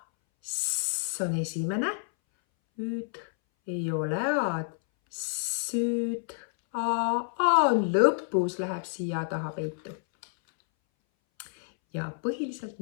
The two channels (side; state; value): right; silent; 59 dB below the other